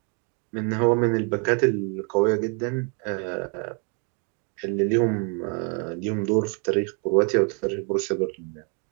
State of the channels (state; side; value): quieter; left; 37.8 dB